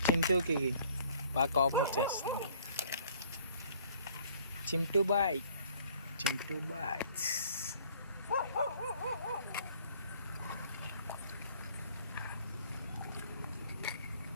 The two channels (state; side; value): inverted; both; correlation -0.57